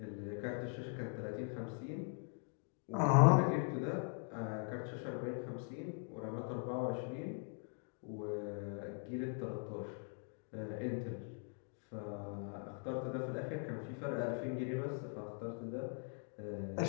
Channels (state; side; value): silent; right; 50 dB below the other